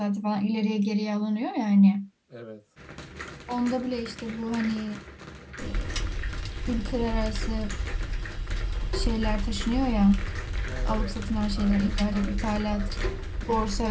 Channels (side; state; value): both; identical; correlation 1.00